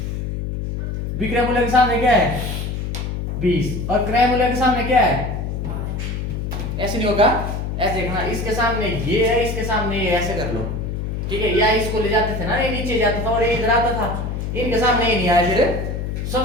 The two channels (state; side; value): noise; left; hum, 3 dB below the sound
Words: विक्रय मूल्य के सामने क्या है? 20 और क्रय मूल्य के सामने क्या है? ऐसे नहीं होगा, ऐसे देखना, इसके सामने ये है, इसके सामने ये, ऐसे कर लो, ठीक है। या इसको ले जाते थे ना, ये नीचे जाता था और ये इधर आता था, इनके सामने ये नहीं आया। फिर